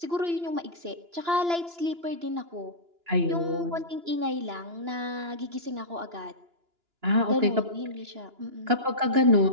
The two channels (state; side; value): late; left; 2.9 ms